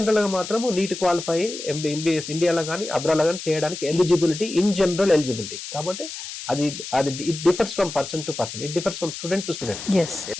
గా మాత్రం నీట్ క్వాలిఫై ఎంబీబీఎస్ ఇండియాలో కానీ అబ్రాడ్ కానీ చేయడానికి ఎలిజిబిలిటీ, ఇన్ జనరల్ ఎలిజిబిలిటీ. కాబట్టి అది అది it differs from person to person, it differs from student to student.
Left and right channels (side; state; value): left; noise; hiss, 9 dB below the sound